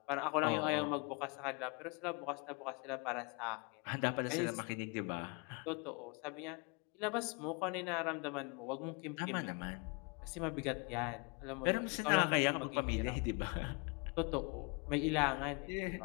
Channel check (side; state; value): right; quieter; 31.8 dB